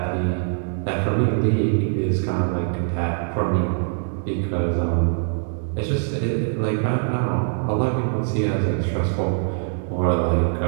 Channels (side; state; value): left; silent; digital silence